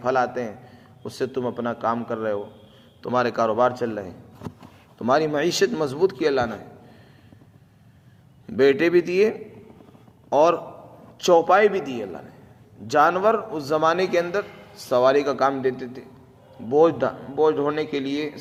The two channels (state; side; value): identical; both; correlation 1.00